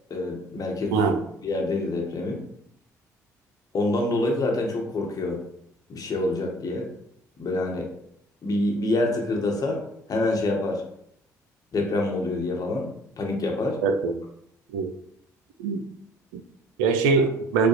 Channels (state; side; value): normal; both; correlation 0.51